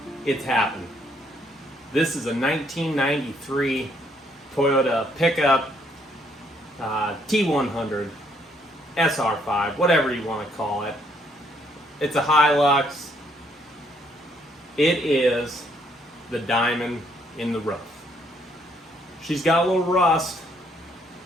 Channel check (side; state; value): both; normal; correlation 0.69